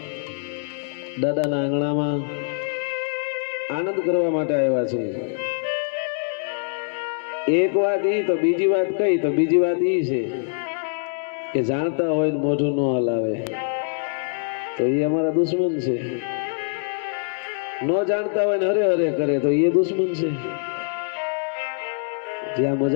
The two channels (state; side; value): silent; right; digital silence